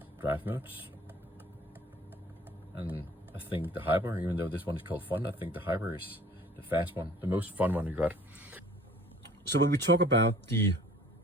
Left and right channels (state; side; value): normal; both; correlation 0.51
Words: drive modes, and I think the hyper, even though this one is called fun, I think the hyper is the fast one, the most fun one you got. So when we talk about the